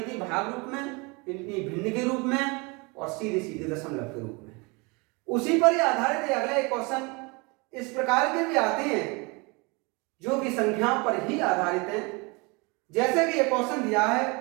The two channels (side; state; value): left; quieter; 28.3 dB